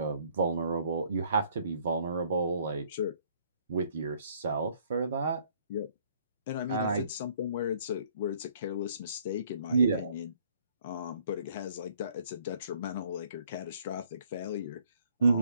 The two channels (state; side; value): inverted; both; correlation -0.62